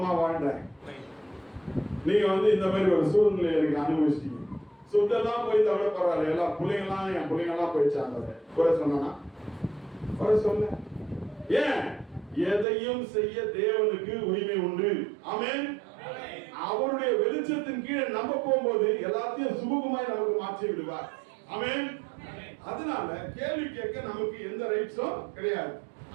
வாழ்ந்தேன், நீங்க வந்து இந்த மாதிரி ஒரு சூழ்நிலை எனக்கு அனுபவிச்சிட்டீங்க. சொத்தெல்லாம் போய் தவிர பரவாயில்ல, எல்லாம் பிள்ளைங்கெல்லாம் என் பிள்ளைங்கெல்லாம் போயிடுச்சாங்க. குறை சொன்னா குறை சொல்ல. ஏன்? எதையும் செய்ய தேவனுக்கு உரிமை உண்டு. ஆமென். அவருடைய வெளிச்சத்தின் கீழே நம்ம போகும்போது எல்லாத்தையும் சுமூகமாய் நமக்கு மாற்றி விடுவார். ஆமென். அதனால கேள்வி கேட்க நமக்கு எந்த ரைட்ஸும் கிடையாது.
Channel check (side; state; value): left; drops out; at 12.7 s